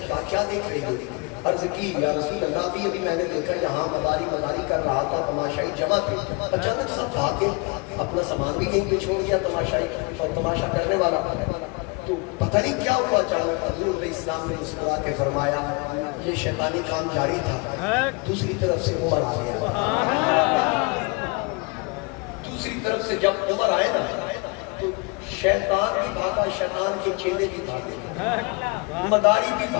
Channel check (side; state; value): right; quieter; 28.8 dB